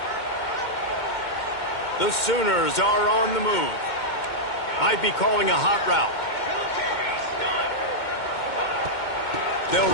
The Sooners are on the move. Might be calling a hot route. They'll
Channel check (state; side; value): late; right; 2.1 ms